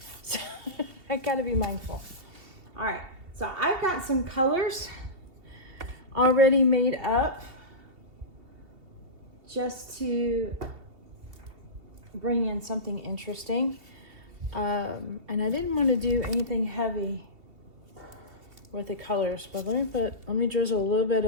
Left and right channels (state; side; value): late; left; 2.7 ms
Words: so I gotta be mindful. All right, so I've got some colors already made up just to bring in something interesting. And I didn't want to do anything heavy with the colors, but let me drizzle a little bit